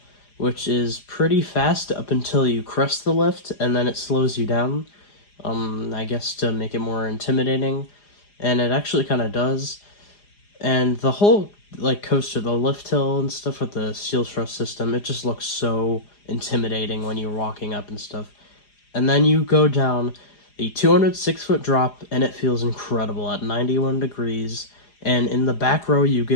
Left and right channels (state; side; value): late; right; 4.9 ms